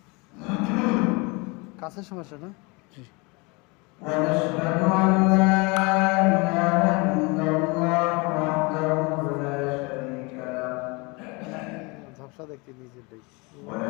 কাছের সমস্যা না? জি ঝাপসা দেখতে নিজের দেখ।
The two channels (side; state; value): right; quieter; 27.8 dB